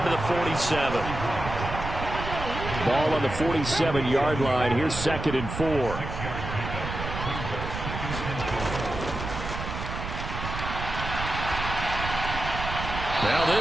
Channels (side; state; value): right; noise; rumble, 6 dB below the sound